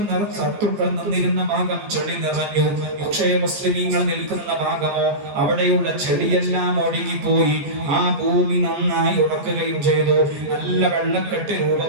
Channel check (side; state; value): left; late; 14 ms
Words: നിന്നിരുന്ന ഭാഗം ചെളി നിറഞ്ഞു. പക്ഷേ മുസ്ലിമീങ്ങൾ നിൽക്കുന്ന ഭാഗമോ അവിടെയുള്ള ചെളിയെല്ലാം ഒഴുകിപ്പോയി. ആ ഭൂമി നന്നായി ഉറക്കുകയും ചെയ്തു, നല്ല വെള്ളക്കെട്ട്